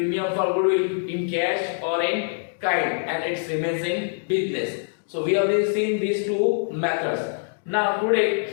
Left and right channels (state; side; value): silent; right; digital silence